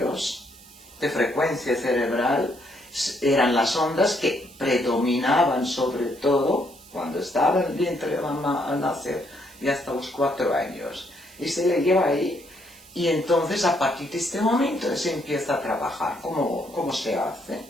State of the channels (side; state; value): right; noise; hiss, 22 dB below the sound